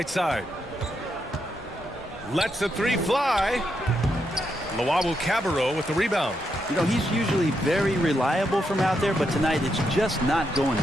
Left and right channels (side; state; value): both; normal; correlation 0.81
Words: side. Lets the three fly. Luawu Cabarro with the rebound. You know, he's usually very reliable from out there, but tonight it's just not going